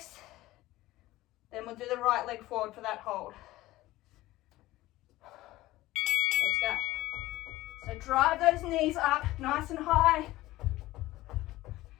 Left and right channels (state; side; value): quieter; right; 17.3 dB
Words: Then we'll do the right leg forward for that hold. Let's go. So drive those knees up nice and high.